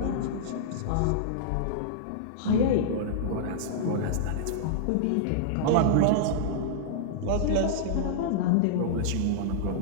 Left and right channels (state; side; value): different; both; correlation -0.02